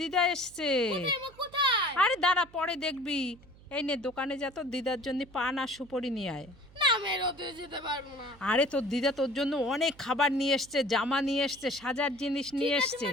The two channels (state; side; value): noise; right; hum, 24 dB below the sound